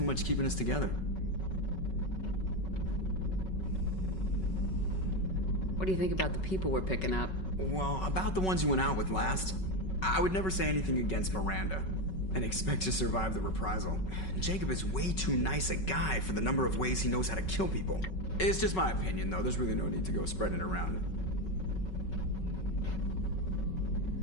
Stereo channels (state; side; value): late; right; 5.3 ms